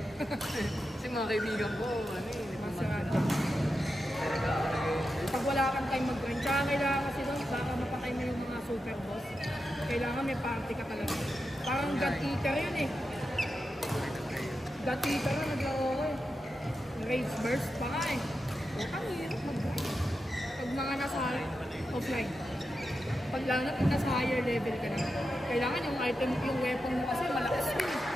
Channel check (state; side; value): normal; both; correlation 0.89